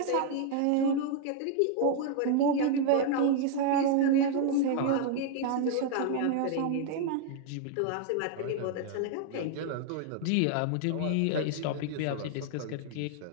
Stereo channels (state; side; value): different; both; correlation 0.00